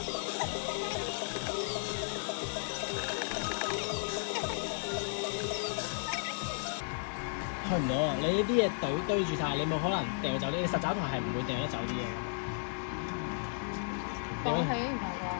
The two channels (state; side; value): silent; right; 55 dB below the other